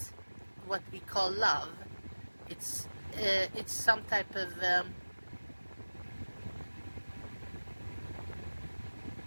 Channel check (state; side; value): inverted; both; correlation -1.00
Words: what we call love. It's some type of